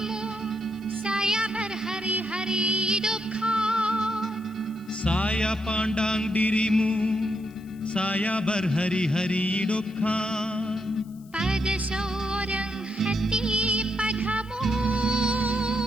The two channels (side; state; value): left; noise; hiss, 28 dB below the sound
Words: saya berhari-hari duka saya pandang dirimu saya berhari-hari duka pada seorang hati padamu